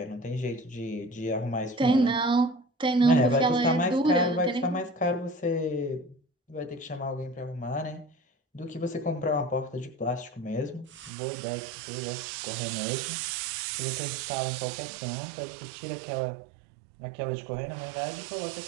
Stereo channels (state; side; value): drops out; left; at 11.1 s